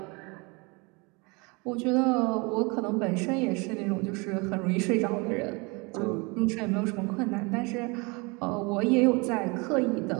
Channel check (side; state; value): left; quieter; 28.4 dB